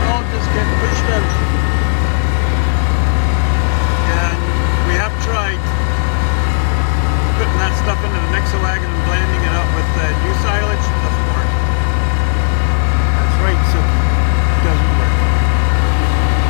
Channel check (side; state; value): right; silent; digital silence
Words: all just gets pushed out. Yeah, and we have tried putting that stuff into the mixer wagon and blending it up with new silage. It doesn't work. That's right, Sugi. It doesn't work.